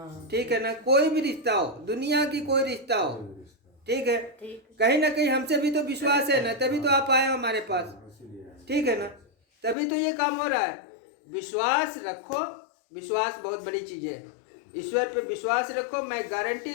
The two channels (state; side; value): drops out; right; at 9.8 s